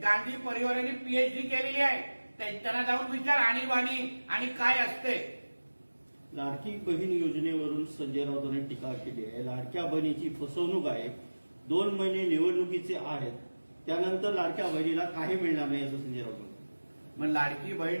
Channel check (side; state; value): both; inverted; correlation -1.00